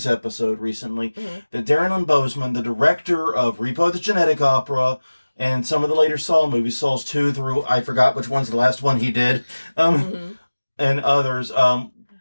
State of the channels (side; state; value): both; inverted; correlation -1.00